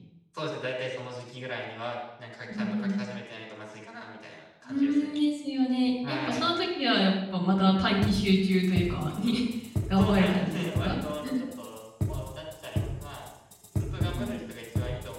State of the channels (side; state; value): both; identical; correlation 1.00